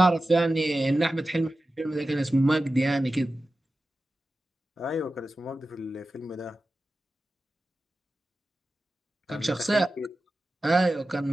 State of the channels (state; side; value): normal; both; correlation 0.94